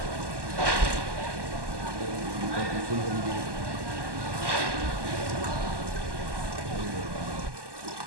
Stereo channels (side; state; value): left; late; 1.1 ms